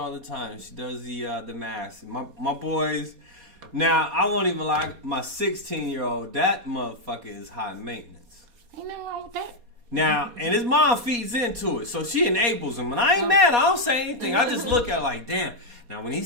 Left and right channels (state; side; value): late; left; 4.2 ms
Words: the time. She does the mask. My boys. Now I won't even lie. My 16-year-old, that motherfucker is high maintenance. Ain't nothing wrong with that. Now, and his mom feeds into it, so she enables him. And I ain't mad. I don't say anything. I just look at it like, damn. Now, when he